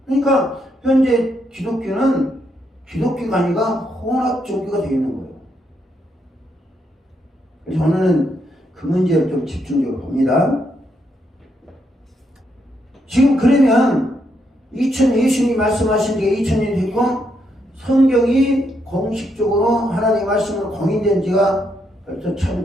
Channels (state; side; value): normal; both; correlation 0.78